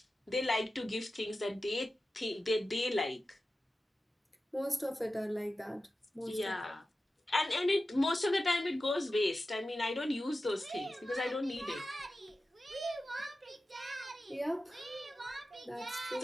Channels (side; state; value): both; normal; correlation 0.93